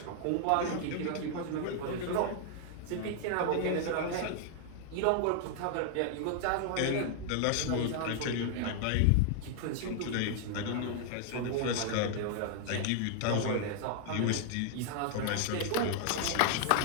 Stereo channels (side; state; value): both; different; correlation 0.00